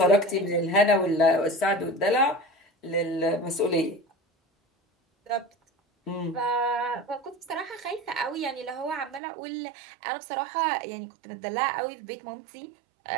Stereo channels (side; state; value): left; drops out; at 9.2 s